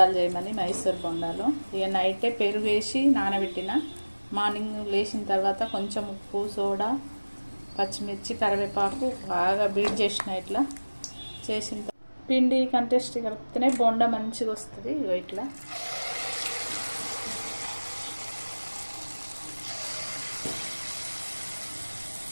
చేయమని, మైసూర్ బోండాలు. ఇక నైటే పెరుగు వేసి నానబెట్టిన, మార్నింగ్ లేచిన తర్వాత కొంచెం ఉప్పు, సోడా, పచ్చిమిర్చి, కరివేపాకు బాగా బీట్ చేసిన. ఇట్లా చేసిన పిండి కంటెస్ట్ కలిపితేనే బోండా మంచిగా వస్తుంది. ఇట్లా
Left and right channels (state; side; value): inverted; both; correlation -1.00